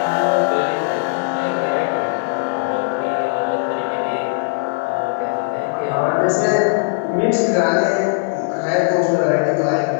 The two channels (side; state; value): right; silent; digital silence